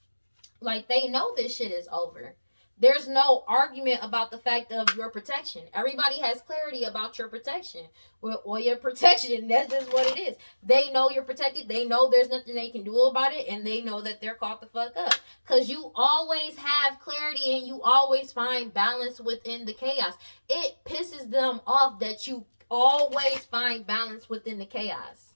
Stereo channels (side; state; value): both; inverted; correlation -1.00